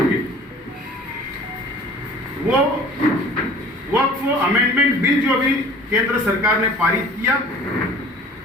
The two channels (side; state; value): both; normal; correlation 0.46